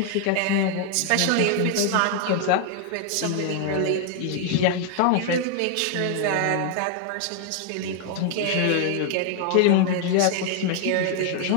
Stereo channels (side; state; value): both; different; correlation 0.00